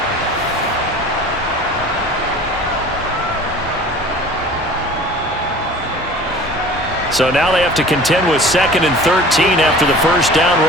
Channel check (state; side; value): normal; both; correlation 0.43